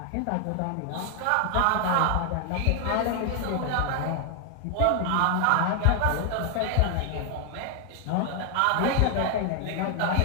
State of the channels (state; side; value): different; both; correlation 0.00